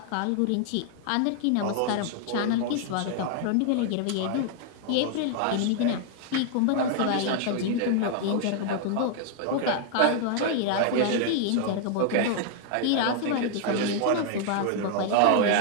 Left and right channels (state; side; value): different; both; correlation 0.00